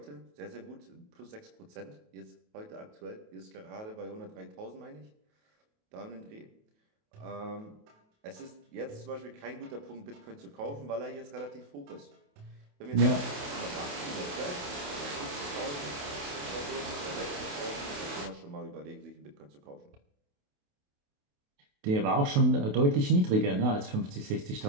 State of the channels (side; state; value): left; late; 28 ms